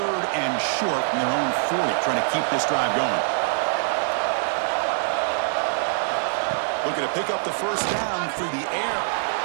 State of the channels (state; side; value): silent; left; digital silence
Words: and short from their own 40, trying to keep this drive going. looking to pick up the first down through the air.